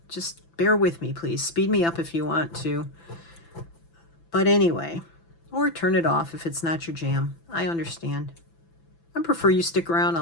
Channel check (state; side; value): late; right; 6.0 ms